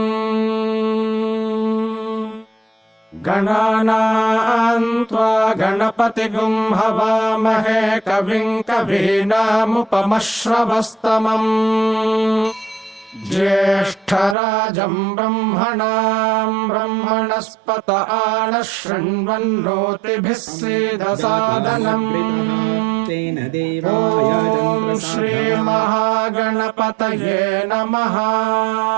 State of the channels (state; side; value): drops out; left; at 14.4 s